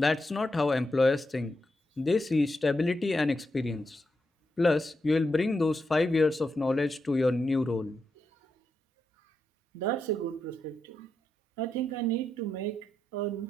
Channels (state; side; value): normal; both; correlation 0.85